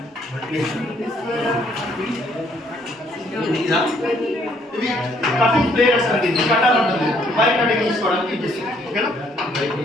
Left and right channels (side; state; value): both; normal; correlation 0.66